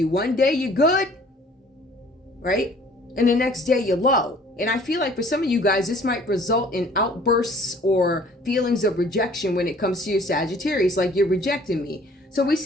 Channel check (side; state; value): both; normal; correlation 0.54